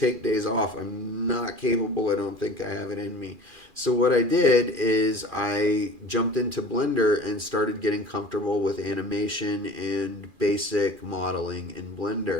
days off. I'm not capable. I don't think I have it in me. So what I did is I jumped into Blender and started getting comfortable with animation and basic modeling in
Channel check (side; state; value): left; late; 2.4 ms